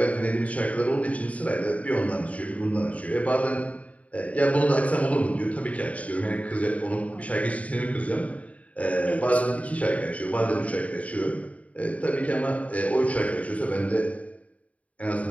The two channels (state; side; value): late; right; 0.067 ms